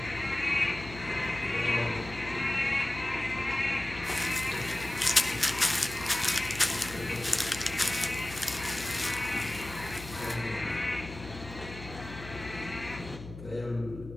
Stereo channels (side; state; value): left; noise; hum, 13 dB below the sound